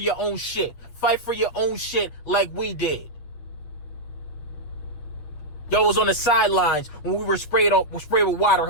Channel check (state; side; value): late; right; 8.4 ms